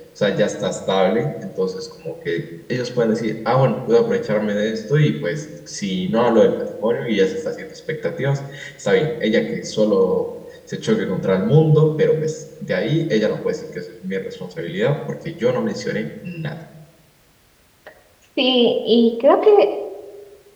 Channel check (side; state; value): both; identical; correlation 1.00